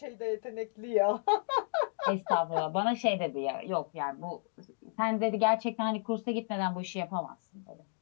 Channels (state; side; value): silent; right; digital silence